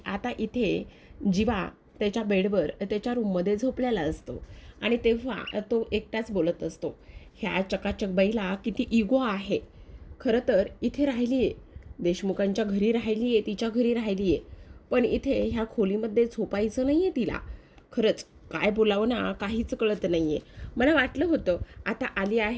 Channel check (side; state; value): both; identical; correlation 1.00